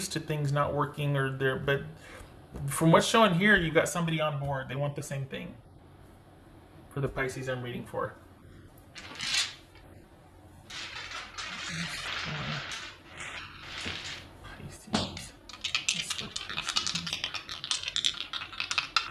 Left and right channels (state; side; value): identical; both; correlation 1.00